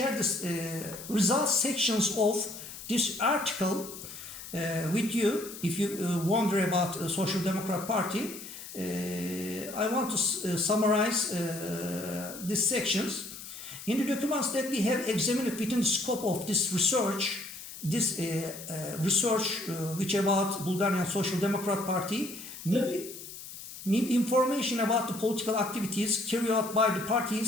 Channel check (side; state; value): left; noise; hiss, 13 dB below the sound